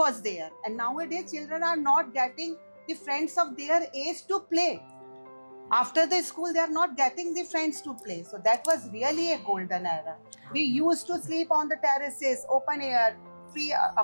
there. And nowadays children are not getting the friends of their age to play. After the school, they are not getting the friends to play. So that was really a golden era. We used to sleep on the terraces, open air, free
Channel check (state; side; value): inverted; both; correlation -1.00